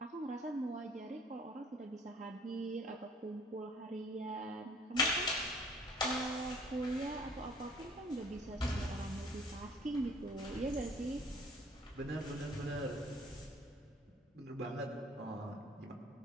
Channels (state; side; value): normal; both; correlation 0.54